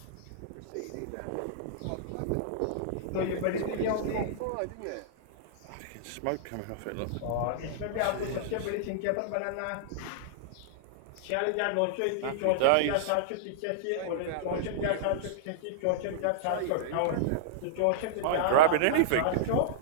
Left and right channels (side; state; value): both; different; correlation -0.02